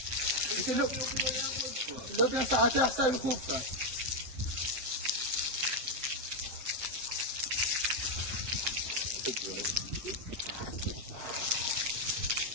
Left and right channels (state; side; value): late; left; 7.6 ms